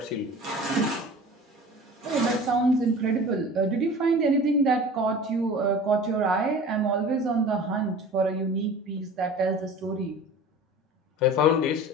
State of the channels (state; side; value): normal; both; correlation 0.40